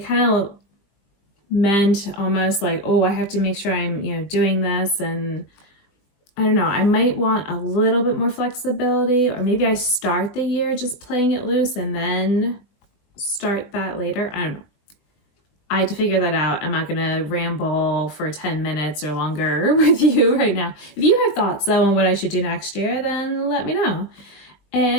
of meant almost like, oh, I have to make sure I'm, doing this. And I don't know, I might want a little bit more flexibility, or maybe I start the year just playing it loose and then start that later. I don't know. I had to figure that out. I'm not going to ramble for 10 minutes or longer with you right now. If you have thoughts though on what I should do next year, then let me know.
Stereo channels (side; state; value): right; late; 20 ms